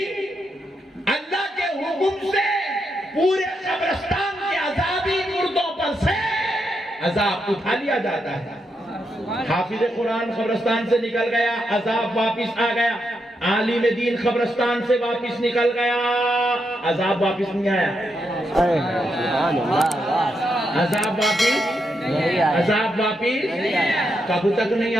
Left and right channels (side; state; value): both; normal; correlation 0.82